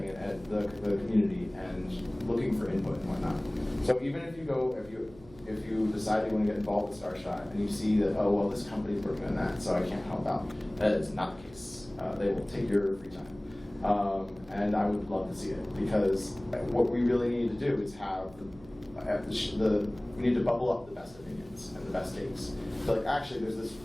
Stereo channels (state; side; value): noise; right; hum, 22 dB below the sound